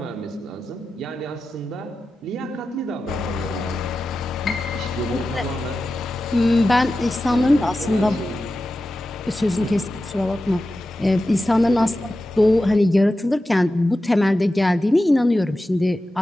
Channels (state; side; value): normal; both; correlation 0.93